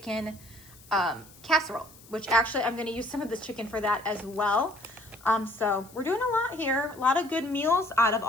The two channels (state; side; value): noise; left; hiss, 23 dB below the sound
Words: casserole, which actually I'm gonna use some of this chicken for that as well. So we're doing a lot here, a lot of good meals out of